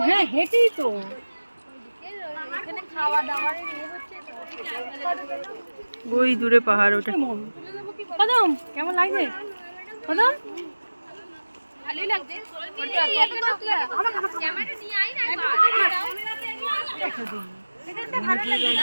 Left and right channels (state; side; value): inverted; both; correlation -1.00